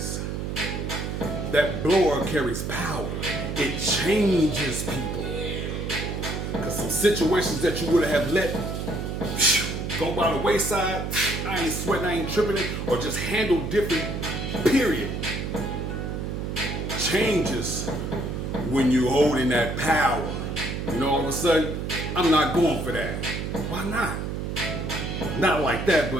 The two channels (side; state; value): right; noise; hum, 4 dB below the sound